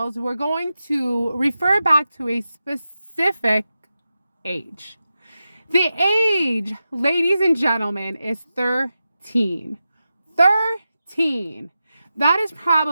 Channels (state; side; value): inverted; both; correlation -0.92